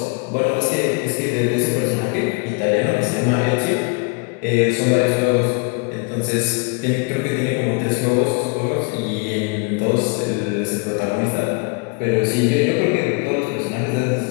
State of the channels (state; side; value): quieter; right; 31.5 dB